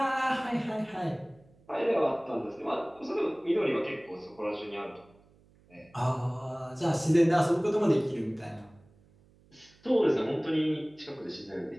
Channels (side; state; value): right; noise; hum, 29 dB below the sound